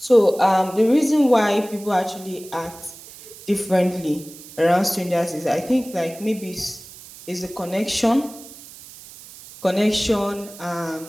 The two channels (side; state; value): right; noise; hiss, 18 dB below the sound